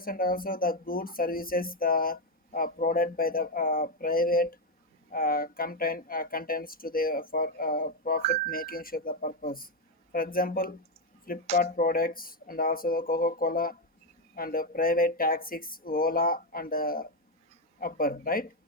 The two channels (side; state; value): both; normal; correlation 0.05